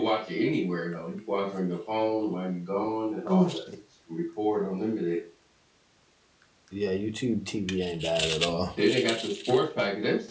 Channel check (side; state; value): both; identical; correlation 1.00